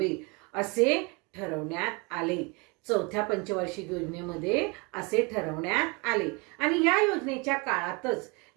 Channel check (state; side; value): quieter; left; 28.7 dB